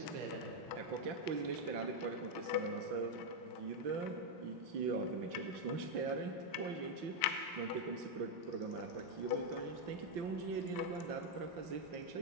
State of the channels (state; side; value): late; left; 5.9 ms